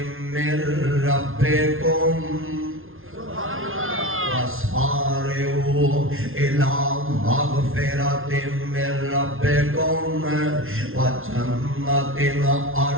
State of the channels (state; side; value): late; left; 0.60 ms